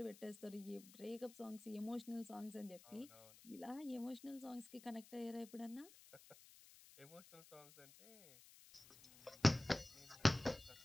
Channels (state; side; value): noise; left; hiss, 20 dB below the sound